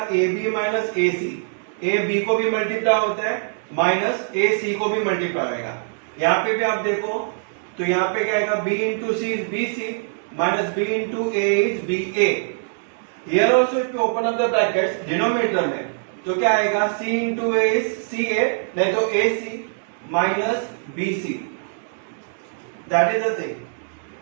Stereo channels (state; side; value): silent; left; digital silence